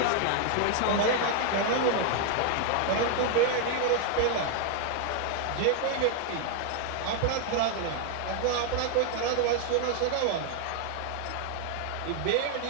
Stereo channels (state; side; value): different; both; correlation 0.00